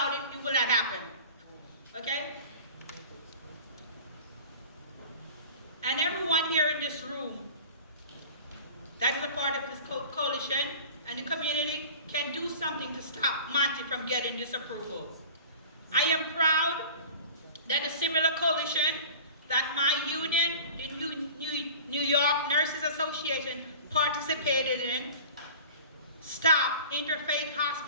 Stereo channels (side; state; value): both; inverted; correlation -0.39